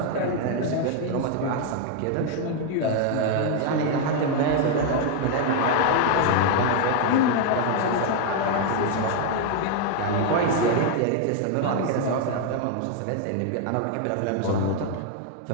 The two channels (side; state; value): both; different; correlation 0.00